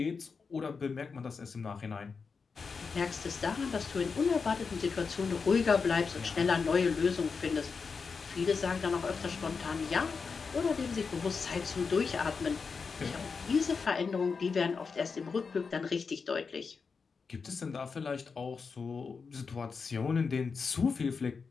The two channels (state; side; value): quieter; right; 5.2 dB